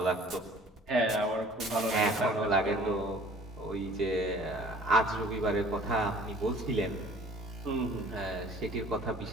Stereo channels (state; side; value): normal; both; correlation 0.50